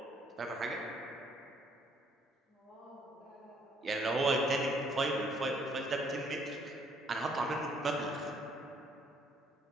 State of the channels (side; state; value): both; normal; correlation 0.65